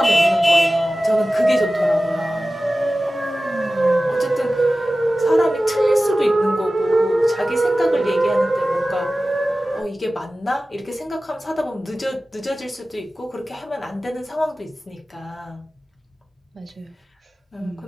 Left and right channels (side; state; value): both; normal; correlation 0.96